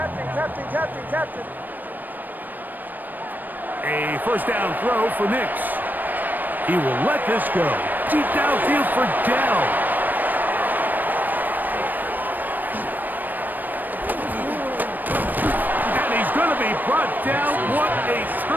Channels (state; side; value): late; left; 0.089 ms